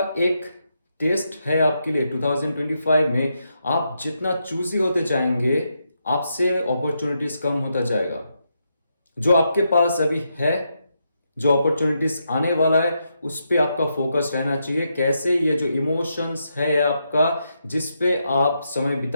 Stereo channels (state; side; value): inverted; both; correlation -0.82